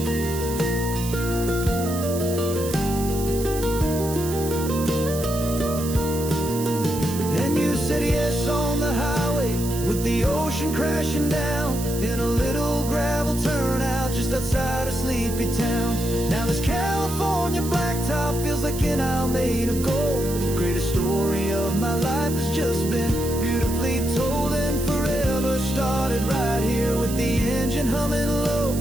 The ocean crashing down in a little gravel turnout just outside a sleepy town. Now this California blacktop feels like an hour made of gold. The greatest story of my life has just been beautifully told, and forever started right here with the engine humming low,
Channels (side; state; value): right; noise; hiss, 10 dB below the sound